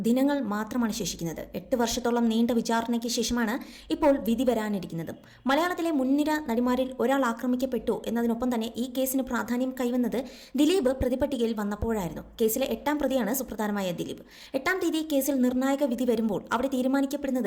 ദിനങ്ങൾ മാത്രമാണ് ശേഷിക്കുന്നത്. 8 വർഷത്തോളം നീണ്ട വിചാരണയ്ക്ക് ശേഷമാണ് ഇപ്പോൾ വിധി വരാനിരിക്കുന്നത്. മലയാളത്തിലെ മുൻനിര നടിമാരിൽ ഒരാൾ ആക്രമിക്കപ്പെട്ടു എന്നതിനൊപ്പം തന്നെ ഈ കേസിന് പ്രാധാന്യം കൈവന്നത് ദിലീപ് പ്രതിപട്ടികയിൽ വന്നപ്പോഴായിരുന്നു. കേസിലെ 8ാം പ്രതിയാണ് സുപ്രധാനമായ ദിലീപ്. 8ാം തീയതി കേസിൽ നിർണായക വിധി വരുമ്പോൾ അവിടെ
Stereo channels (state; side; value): identical; both; correlation 1.00